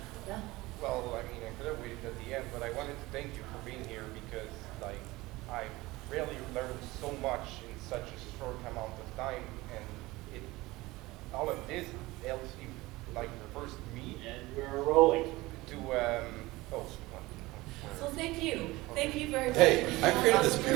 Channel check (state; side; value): quieter; left; 20.2 dB